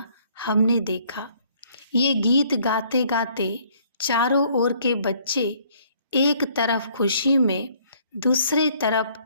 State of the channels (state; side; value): inverted; both; correlation -0.62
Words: हमने देखा। ये गीत गाते गाते चारों ओर के बच्चे एक तरफ खुशी में, दूसरे तरफ